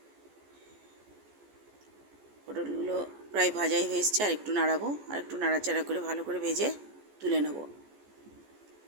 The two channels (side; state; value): left; late; 14 ms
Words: পটলগুলো প্রায় ভাজাই হয়ে এসছে, আর একটু নাড়াবো, আর একটু নাড়াচাড়া করে ভালো করে ভেজে তুলে নেব।